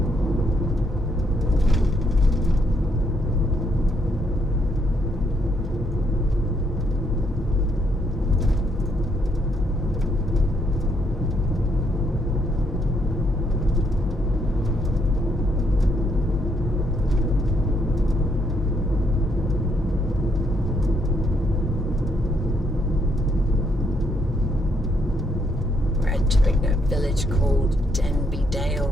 Entering a village called Denby Dale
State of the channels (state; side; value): normal; both; correlation 0.73